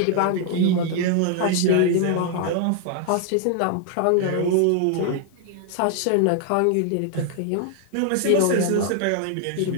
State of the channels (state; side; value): different; both; correlation 0.00